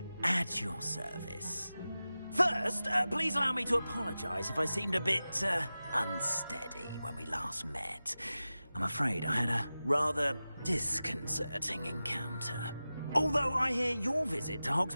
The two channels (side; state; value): both; inverted; correlation -0.95